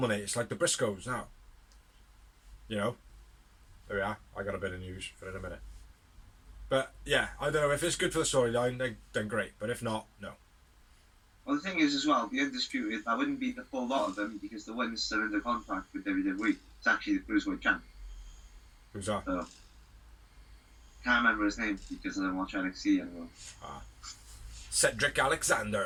It's like the Briscoes now. You know? There we are. I got a bit of news for in a minute. But yeah, I don't know if it's good for the storyline, then great. But if not, no. Well, the thing is as well, the Undisputed, that wouldn't be the full lot of them because the one's still under contract with WWE. It's actually the Cruiserweight champ. Who's that? So, can't remember his name because I don't watch NXT anymore. Cedric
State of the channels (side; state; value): both; identical; correlation 1.00